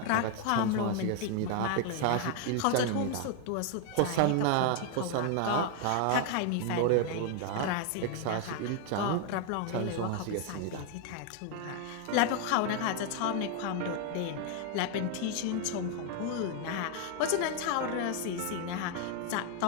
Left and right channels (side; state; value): both; different; correlation 0.01